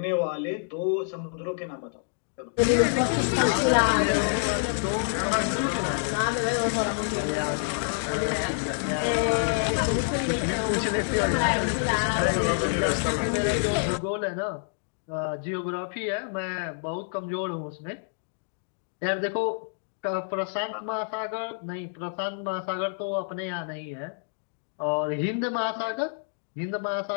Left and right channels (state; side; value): silent; right; digital silence